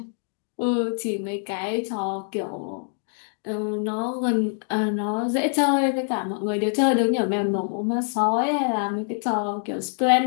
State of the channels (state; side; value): silent; right; digital silence